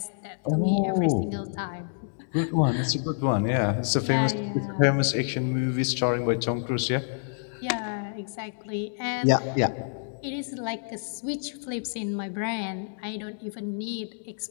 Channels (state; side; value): silent; right; digital silence